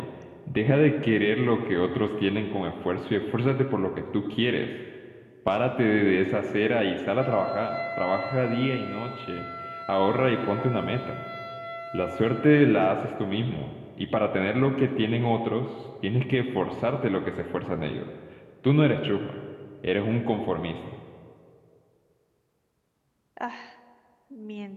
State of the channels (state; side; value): identical; both; correlation 1.00